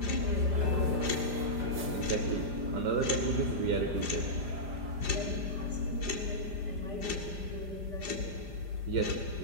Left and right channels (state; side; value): late; left; 5.0 ms